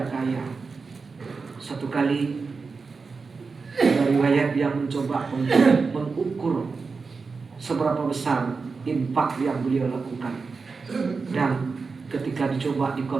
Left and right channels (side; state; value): left; quieter; 4.6 dB